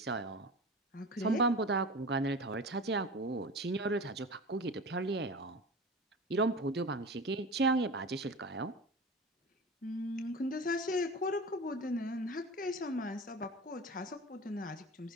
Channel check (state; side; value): normal; both; correlation 0.33